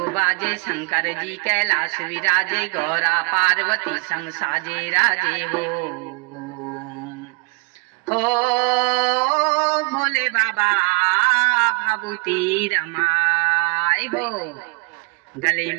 बाजे, शंकर जी कैलाश विराजे, गौरा पार्वती संग साजे राजे हो भोले बाबा भभूति रमाए हो। गले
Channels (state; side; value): quieter; left; 35.3 dB